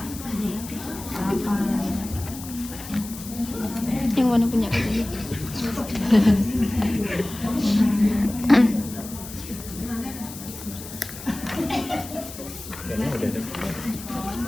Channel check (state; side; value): noise; left; hiss, 13 dB below the sound